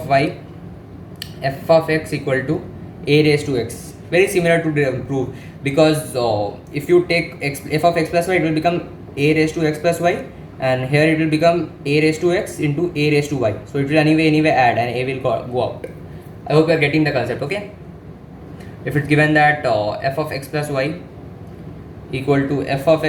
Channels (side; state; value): both; identical; correlation 1.00